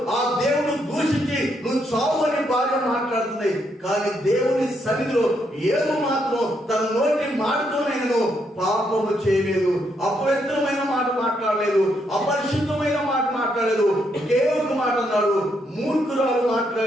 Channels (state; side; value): normal; both; correlation 0.76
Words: ఆ దేవుడు దూషించి నువ్వు చావు అని భార్య మాట్లాడుతుంది. కానీ దేవుని సన్నిధిలో యోబు మాత్రం తన నోటి మాటతోనైనా పాపము చేయలేదు, అపవిత్రమైన మాట మాట్లాడలేదు, అపరిశుద్ధమైన మాట మాట్లాడలేదు. ఒకే ఒక మాట అన్నాడు, మూర్ఖురాలు